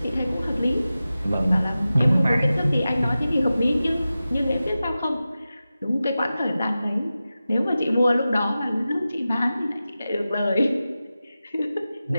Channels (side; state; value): both; inverted; correlation -0.94